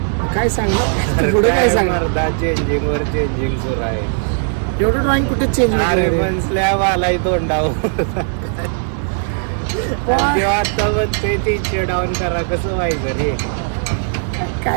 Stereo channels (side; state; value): left; silent; digital silence